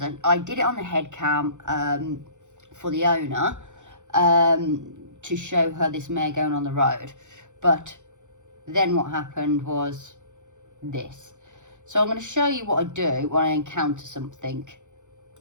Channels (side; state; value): left; late; 0.85 ms